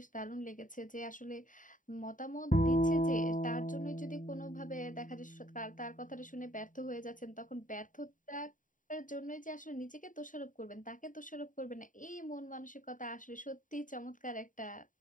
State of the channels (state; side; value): late; right; 0.38 ms